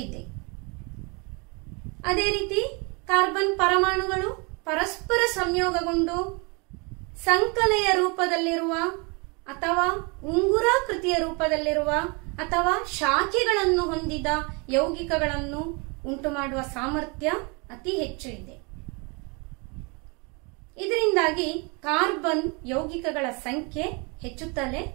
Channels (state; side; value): quieter; left; 30.9 dB